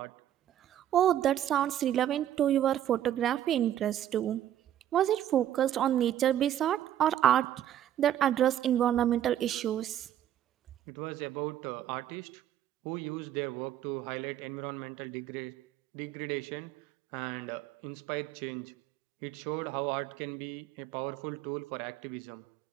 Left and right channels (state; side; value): quieter; left; 11.4 dB